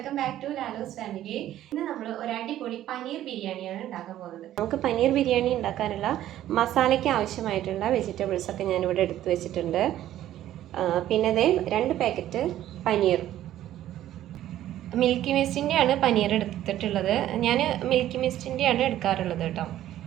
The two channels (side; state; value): left; quieter; 12.8 dB